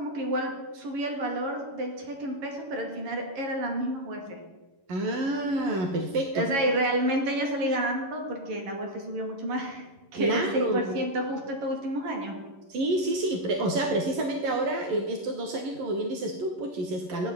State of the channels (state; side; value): late; left; 11 ms